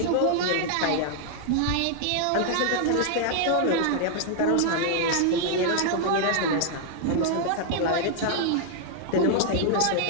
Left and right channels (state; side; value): different; both; correlation 0.00